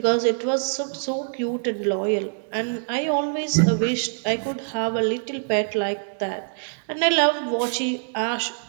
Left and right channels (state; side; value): silent; left; digital silence